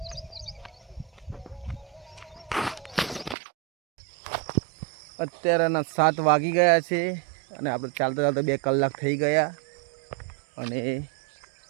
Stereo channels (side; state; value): left; drops out; at 3.4 s